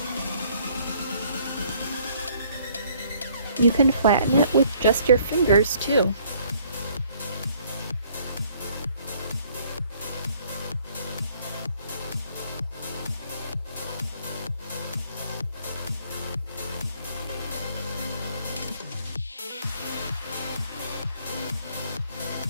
You can flatten it with just your fingers too.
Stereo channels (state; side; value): inverted; both; correlation -0.62